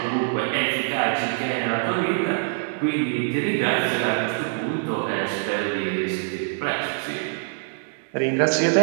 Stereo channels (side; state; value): left; silent; digital silence